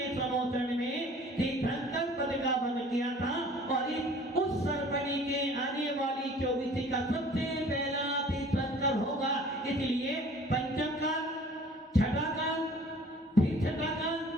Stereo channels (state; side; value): normal; both; correlation 0.50